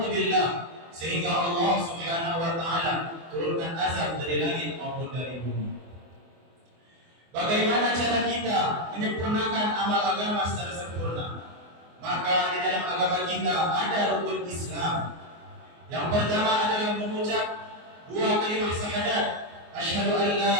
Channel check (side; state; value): left; late; 24 ms